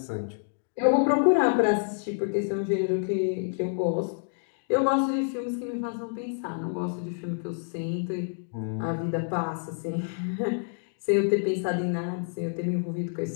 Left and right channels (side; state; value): right; silent; digital silence